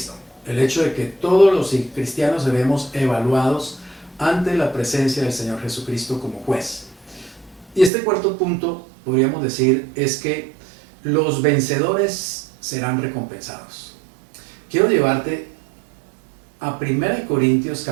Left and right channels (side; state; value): left; drops out; at 7.9 s